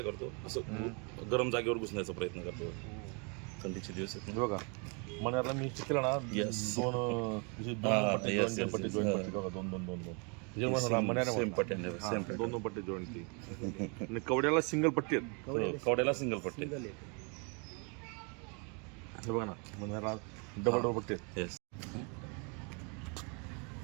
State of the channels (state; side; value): quieter; left; 34.8 dB